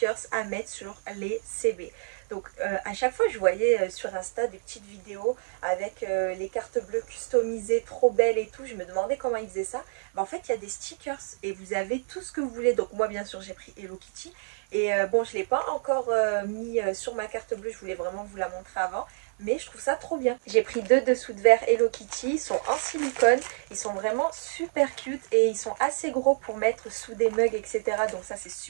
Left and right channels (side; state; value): left; silent; 59 dB below the other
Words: à mettre sur les CV. Donc à chaque fois, je voyais sur Insta des petites vidéos avec les cartes bleues customisées, trop belles et tout. Je me demandais comment ils faisaient ça. En fait, il y a des stickers et vous avez tout ce que vous voulez. Donc moi, bien sûr, j'ai pris Hello Kitty. Et bon, je ne l'ai pas encore mis sur ma carte bleue. Je voulais vraiment vous la montrer avant. Mais je trouve ça trop bien. J'ai pris deux dessous de verre Hello Kitty. Ils sont en silicone. Ils sont vraiment super cute. Et ils sont assez gros pour mettre sous des mugs, etc. Donc ça, c'est